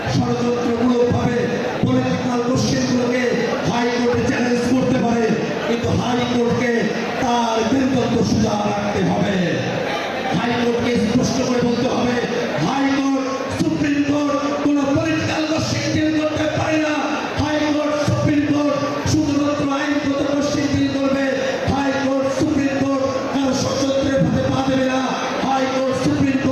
ষড়যন্ত্রমূলকভাবে পলিটিক্যাল কোশ্চেনগুলোকে হাইকোর্টে চ্যালেঞ্জ করতে পারে, কিন্তু হাইকোর্টকে তার বীরত্ব সোজা রাখতে হবে। হাইকোর্টকে স্পষ্ট করে বলতে হবে, হাইকোর্ট সুপ্রিম কোর্ট কোন পলিটিক্যাল কোশ্চেন ডিল করতে পারে না। হাইকোর্ট সুপ্রিম কোর্ট শুধুমাত্র আইনগত কোশ্চেন ডিল করবে। হাইকোর্ট সুপ্রিম কোর্ট কারো ষড়যন্ত্রের পথে পা দেবে না। হাইকোর্ট সুপ্রিম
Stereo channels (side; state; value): both; identical; correlation 1.00